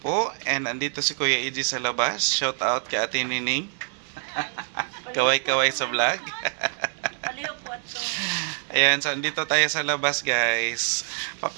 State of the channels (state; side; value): silent; left; digital silence